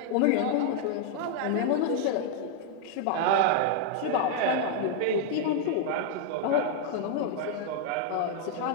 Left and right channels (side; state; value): both; different; correlation 0.00